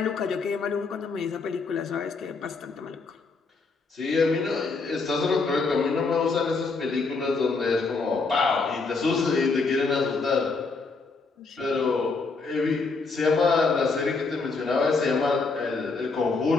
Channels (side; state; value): right; quieter; 4.2 dB